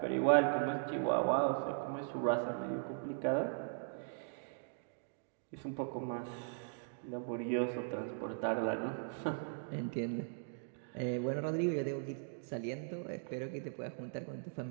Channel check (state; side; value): silent; left; digital silence